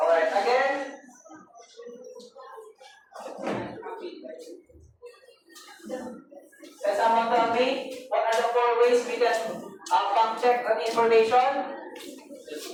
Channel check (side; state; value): both; identical; correlation 1.00